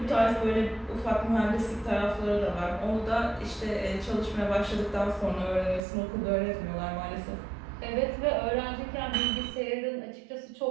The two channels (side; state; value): left; drops out; at 5.8 s